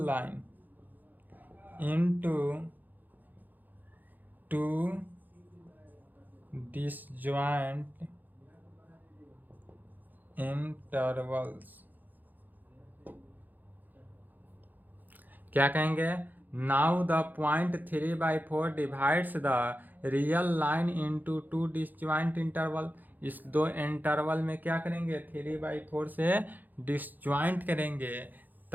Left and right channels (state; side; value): late; left; 0.085 ms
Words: line into 2 disjoint intervals। क्या कहेंगे, now the point 3/4 divides the real line into 2 disjoint interval. इस दो इंटरवल में क्या करेंगे 3/4 से डिसजॉइंट करेंगे,